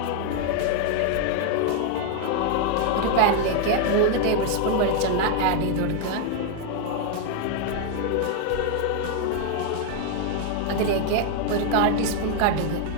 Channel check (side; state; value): both; different; correlation 0.00